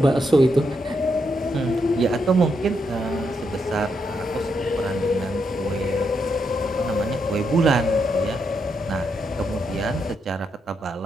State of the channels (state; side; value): normal; both; correlation 0.80